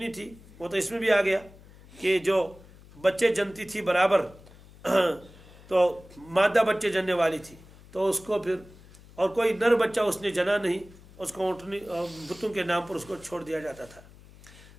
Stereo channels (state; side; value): noise; left; hum, 22 dB below the sound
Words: تھی، وہ تو اس میں بھی آ گیا کہ جو بچے جنتی تھی برابر، تو مادہ بچے جننے والی تھی، تو اس کو پھر اور کوئی نر بچہ اس نے جنا نہیں، اس کو اونٹنی بتوں کے نام پر اس کو چھوڑ دیا جاتا تھا۔